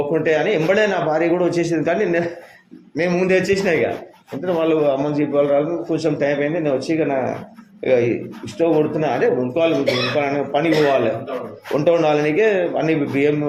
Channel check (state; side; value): identical; both; correlation 1.00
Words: అని ఎంబడే నా భార్య కూడా వచ్చేసింది. కానీ నేను ముందే వచ్చేసిన. ఇక అంటే వాళ్ళు అమ్మని చెప్పి వాళ్ళు రాదు. కొంచెం టైం అయింది. నేను వచ్చి ఇక స్టవ్ కొడుతున్నా. అంటే వండుకోవాలి, పనికి పోవాలి, వంట వండాలనికే అన్ని బియ్యం